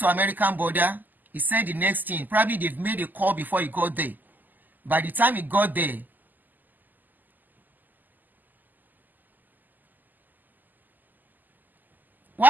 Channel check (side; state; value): left; late; 0.086 ms